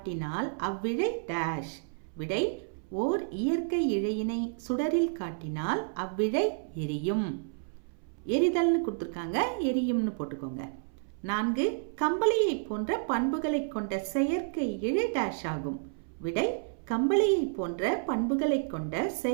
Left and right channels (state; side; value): silent; left; 58 dB below the other